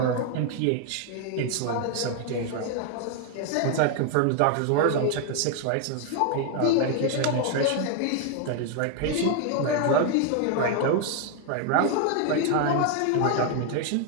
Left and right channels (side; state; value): both; different; correlation 0.00